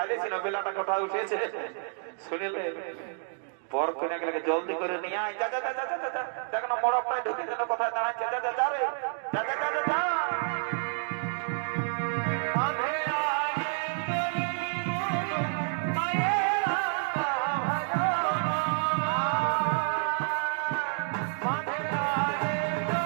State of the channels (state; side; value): silent; left; 58 dB below the other